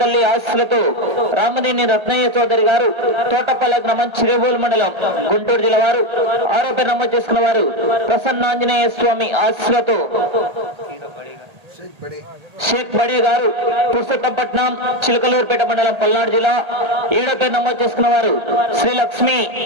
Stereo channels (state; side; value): late; left; 1.8 ms